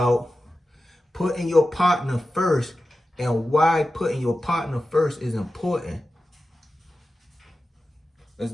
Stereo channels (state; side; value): normal; both; correlation 0.93